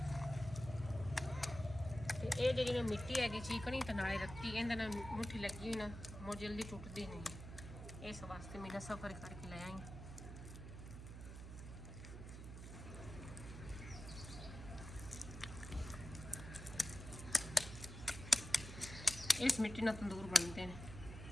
ਤੇ ਇਹ ਜਿਹੜੀ ਨਾ ਮਿੱਟੀ ਹੈਗੀ ਚੀਕਣੀ ਤੇ ਨਾਲੇ ਰੱਤੀ ਇਹਦੇ ਨਾਲ ਮੁੱਠੀ ਲੱਗੀ ਹੋਈ ਨਾ ਮੋ ਜਲਦੀ ਟੁੱਟਦੀ ਨਹੀਂ ਇਸ ਵਾਸਤੇ ਮੈਂ ਸਫਰ ਕਰਕੇ ਲੈ ਆਈ इस मिट्टी ना तंदूर बनते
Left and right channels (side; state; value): right; noise; hum, 10 dB below the sound